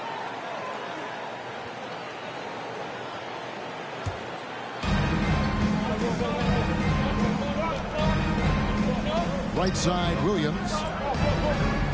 Right side, Williams.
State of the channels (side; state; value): both; identical; correlation 1.00